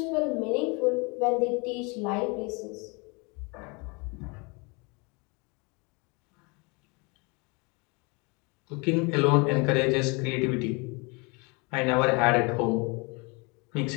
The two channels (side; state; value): right; quieter; 30.0 dB